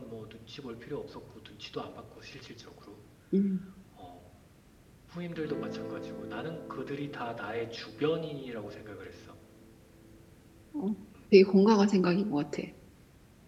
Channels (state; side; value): identical; both; correlation 1.00